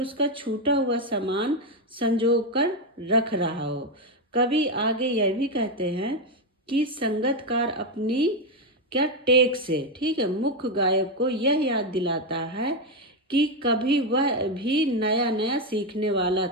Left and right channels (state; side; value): normal; both; correlation 0.07